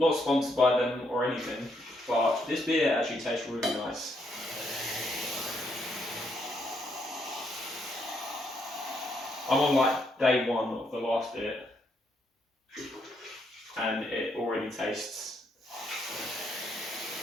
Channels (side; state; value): both; normal; correlation 0.75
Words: sponsored by them or anything, but this beer actually tastes really nice. I'm on like day 1 of the last beer, and it already tastes